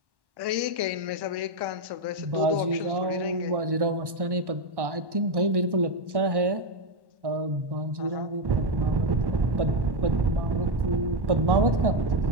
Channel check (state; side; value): late; left; 1.1 ms